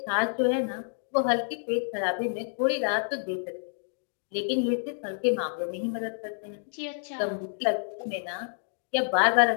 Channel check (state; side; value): silent; right; digital silence